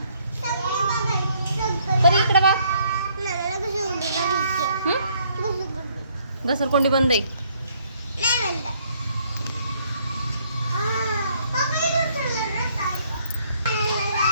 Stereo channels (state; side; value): inverted; both; correlation -0.66